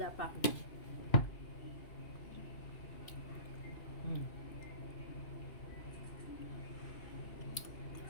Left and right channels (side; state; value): right; late; 2.7 ms